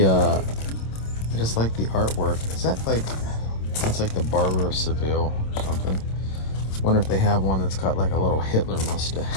I just like the artwork. Is that like, that's like the Barber of Seville or something. Wonder if they have one that's got like a little Hitler mustache.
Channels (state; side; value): late; right; 27 ms